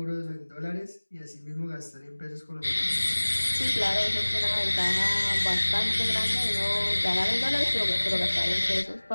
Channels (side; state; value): both; inverted; correlation -1.00